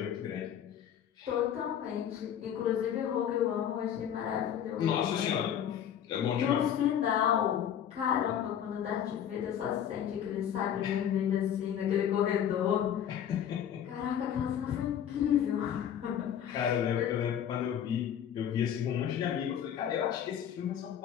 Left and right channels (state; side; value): quieter; right; 9.4 dB